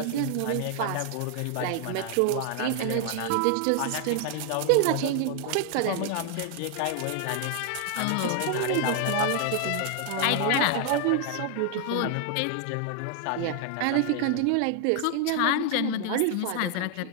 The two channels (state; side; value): different; both; correlation 0.00